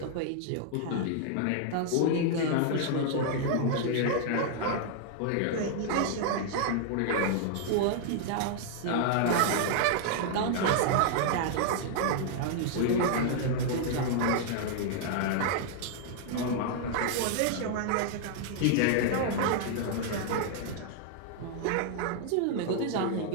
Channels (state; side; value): different; both; correlation 0.00